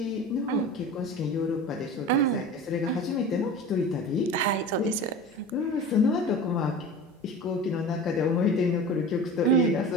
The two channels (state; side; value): normal; both; correlation 0.34